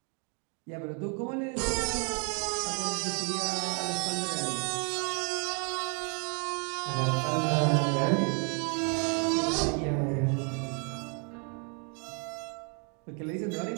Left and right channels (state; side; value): quieter; left; 37.5 dB